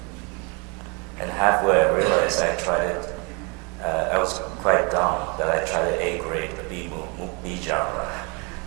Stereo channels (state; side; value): quieter; left; 31.6 dB